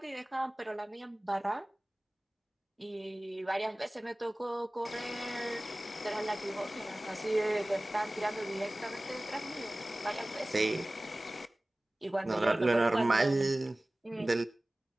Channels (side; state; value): both; normal; correlation 0.98